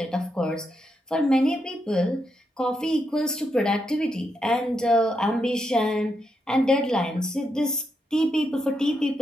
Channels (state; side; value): normal; both; correlation 0.82